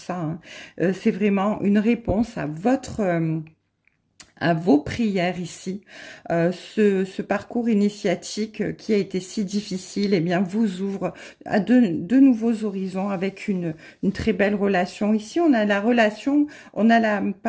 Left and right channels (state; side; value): identical; both; correlation 1.00